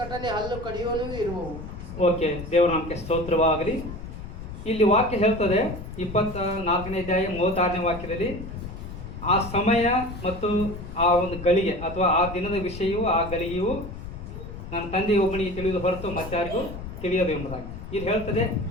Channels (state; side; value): noise; left; rumble, 10 dB below the sound